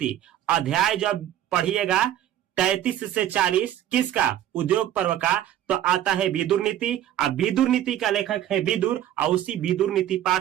अध्याय जब पढ़िएगा 33 से 40 किसका? उद्योग पर्व का, तो आता है विदुर नीति। अब विदुर नीति का लेखक है विदुर, और उसी विदुर नीति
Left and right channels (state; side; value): quieter; left; 11.8 dB